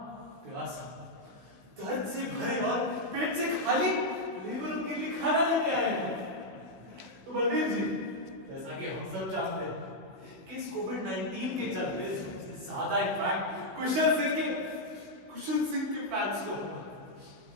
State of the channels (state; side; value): late; left; 16 ms